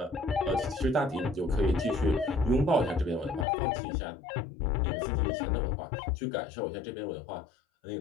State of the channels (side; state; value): right; drops out; at 3.5 s